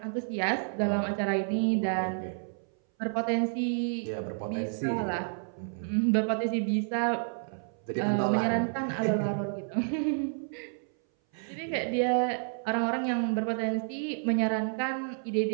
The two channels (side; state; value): left; silent; 58 dB below the other